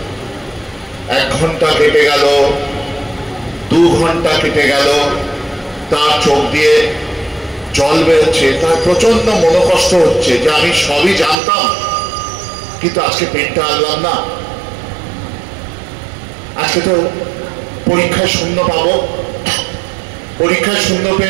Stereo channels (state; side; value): drops out; left; at 11.4 s